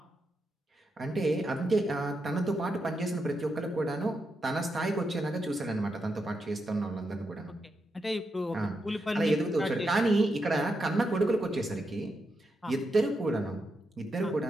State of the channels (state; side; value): normal; both; correlation 0.84